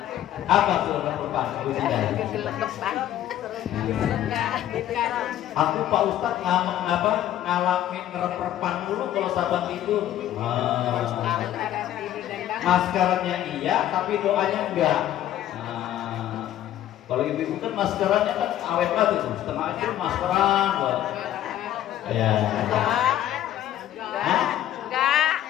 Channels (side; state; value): right; quieter; 12.2 dB